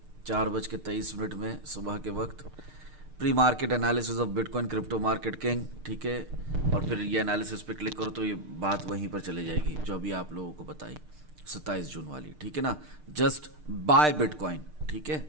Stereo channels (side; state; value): left; late; 6.6 ms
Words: 4:23 में सुबह के वक्त, pre market analysis of bitcoin crypto market king, ठीक है। और फिर ये एनालिसिस पे क्लिक करो तो ये बात वहीं पर चले जाएगी जो अभी आप लोगों को बताई 27 जून वाली, ठीक है ना। जस्ट बाय बिटकॉइन, ठीक है,